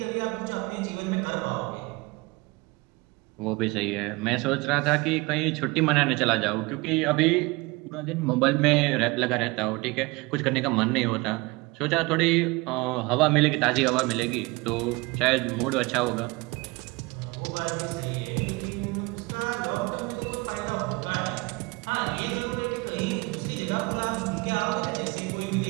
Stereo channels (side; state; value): left; quieter; 24.3 dB